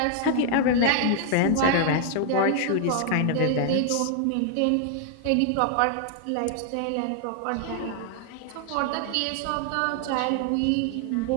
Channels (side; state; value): both; different; correlation 0.00